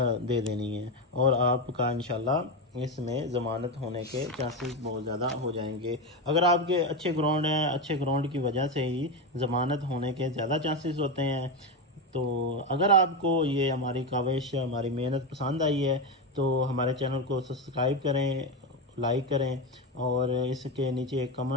دے دینی ہے، اور آپ کا انشاءاللہ اس میں ضمانت ہونے کے چانسز بہت زیادہ ہو جائیں گے۔ اگر آپ کے اچھے گراؤنڈ ہیں، اچھے گراؤنڈ کی وجہ سے ہی ضمانت ہونے کے زیادہ چانسز ہوتے ہیں۔ تو اگر آپ کو یہ ہماری کاوش، ہماری محنت پسند آئی ہے تو ہمارے چینل کو سبسکرائب کریں، لائک کریں، اور اس کے نیچے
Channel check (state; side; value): normal; both; correlation 0.14